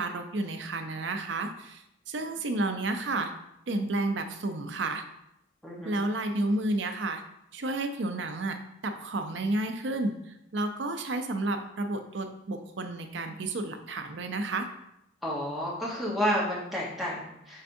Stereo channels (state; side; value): normal; both; correlation 0.52